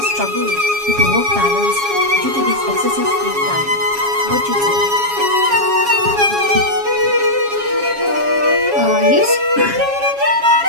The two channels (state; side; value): late; left; 7.3 ms